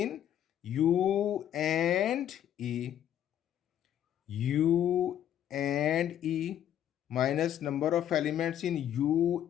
U and E, you and E minus number of elements in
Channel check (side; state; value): right; quieter; 10.6 dB